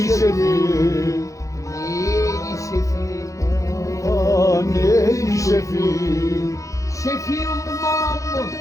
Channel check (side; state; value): right; late; 0.16 ms